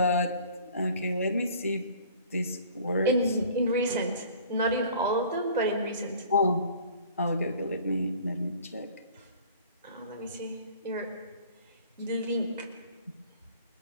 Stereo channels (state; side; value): inverted; both; correlation -0.49